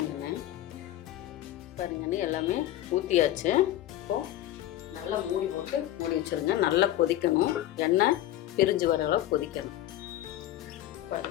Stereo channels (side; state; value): right; quieter; 13.5 dB